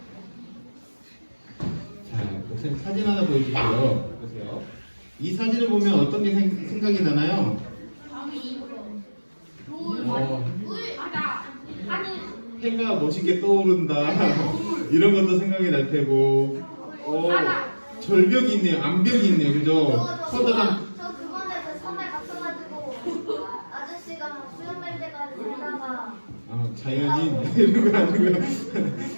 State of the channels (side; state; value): both; inverted; correlation -1.00